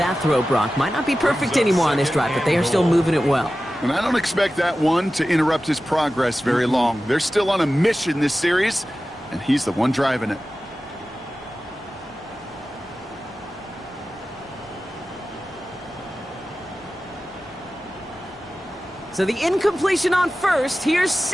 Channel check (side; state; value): both; normal; correlation 0.95